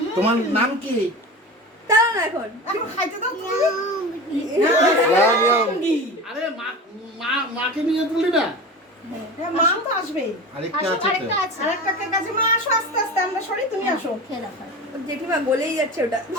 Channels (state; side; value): normal; both; correlation 0.31